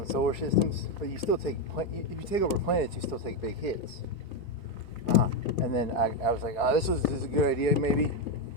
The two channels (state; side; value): late; right; 4.7 ms